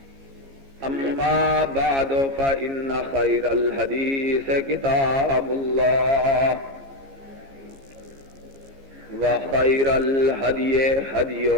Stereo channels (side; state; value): left; late; 15 ms